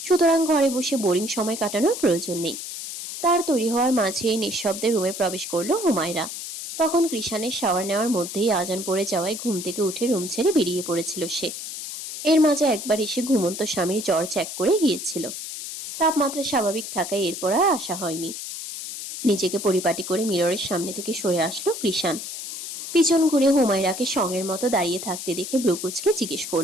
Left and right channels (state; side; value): noise; left; hiss, 8 dB below the sound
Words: সুতরাং ঘরে বসে বোরিং সময় কাটানোর প্রয়োজন নেই। তার তৈরি হওয়ার মাঝেই নিঃশব্দে রুমে প্রবেশ করলো হুমায়রা। তখন কৃষানের শাওয়ার নেওয়ার মধ্যেই আজান পড়ে যাওয়ায় ঘুম থেকে উঠে রুম ছেড়ে বেরিয়ে পড়েছিল সে। এর মাঝে একবার এসে ঘুমন্ত স্বামীর জ্বর চেক করে গিয়েছিল। তাপমাত্রা স্বাভাবিক থাকায় এরপর আর আসা হয়নি। নিজেকে পরিপাটি করে মিররের সামনে থেকে সরে আসলো কৃষান। পিছন ঘুরে হুমায়রাকে সঙ্গের মতো দাঁড়িয়ে থাকতে দেখে ব্রুকুচকে জিজ্ঞেস